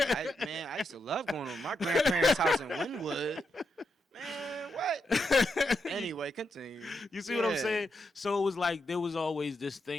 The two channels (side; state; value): both; normal; correlation 0.83